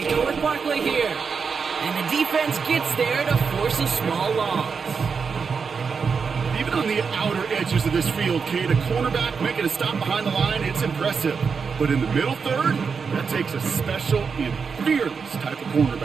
go with Barkley here. And the defense gets there to force a small loss. Even on the outer edges of this field, Kate, a cornerback making a stop behind the line, it's impressive. But in the middle third, that takes a special and fearless type of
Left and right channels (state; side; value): quieter; left; 5.6 dB